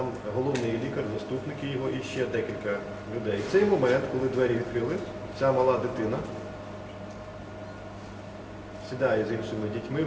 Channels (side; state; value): both; identical; correlation 1.00